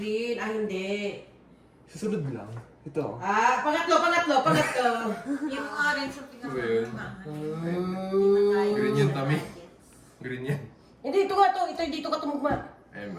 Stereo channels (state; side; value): identical; both; correlation 1.00